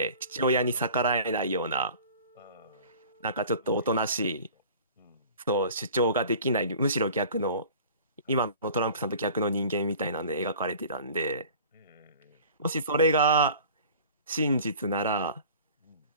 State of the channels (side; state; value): both; inverted; correlation -0.44